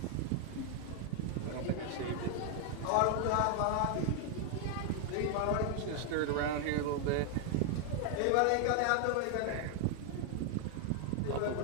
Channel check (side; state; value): both; different; correlation 0.00